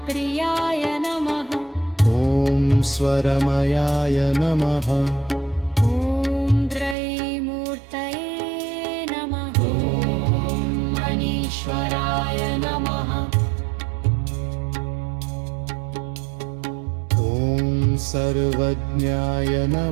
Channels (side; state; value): left; drops out; at 7.0 s